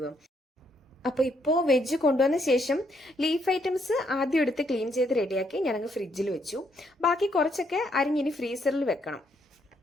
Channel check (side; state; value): both; normal; correlation 0.73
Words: അപ്പോൾ ഇപ്പോൾ വെജ് കൊണ്ടുവന്ന ശേഷം ലീഫ് ഐറ്റംസ് ആദ്യം എടുത്ത് ക്ലീൻ ചെയ്ത് റെഡിയാക്കി ഞാനങ്ങ് ഫ്രിഡ്ജിൽ വെച്ചു. ബാക്കി കുറച്ചൊക്കെ അരിഞ്ഞിനി ഫ്രീസറിൽ വെക്കണം.